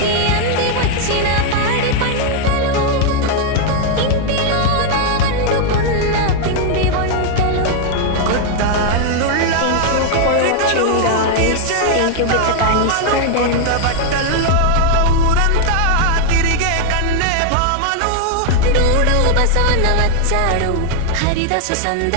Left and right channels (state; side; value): different; both; correlation 0.00